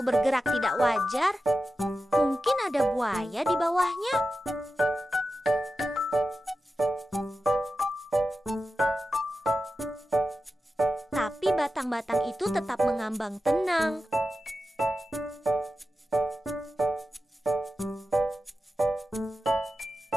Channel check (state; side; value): normal; both; correlation 0.92